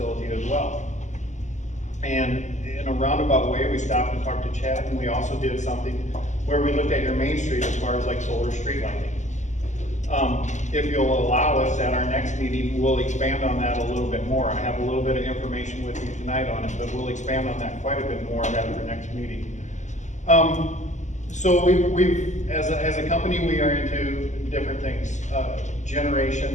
as well. And in a roundabout way, we stopped and talked to Chad, and we also did something where we looked at your main street as far as like solar street lighting. If you'll allow us at our next meeting, we'll expand on that a little bit more. I have a little bit of information with you tonight on it, but we'll expand on that quite a bit more at our next meeting. So we've as a company, we are into different things.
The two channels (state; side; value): late; right; 0.34 ms